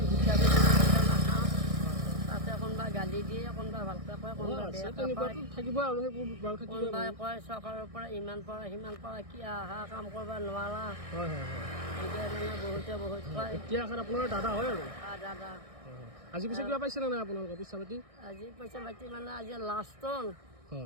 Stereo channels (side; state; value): left; late; 1.6 ms